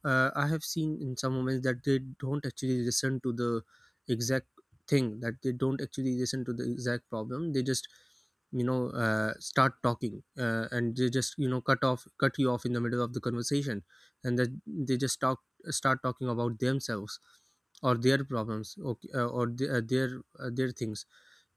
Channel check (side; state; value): both; identical; correlation 1.00